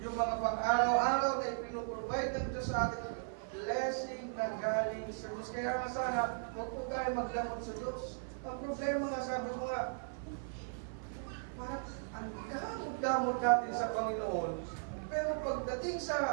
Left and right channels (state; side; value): silent; left; 53 dB below the other